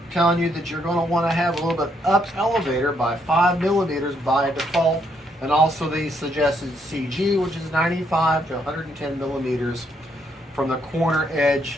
telling you that you're going to want to have a little bit up elevator by 5 millimeters by default, and also the suggested CG, which is 95 to 110 millimeters from the corner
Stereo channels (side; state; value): both; normal; correlation 0.73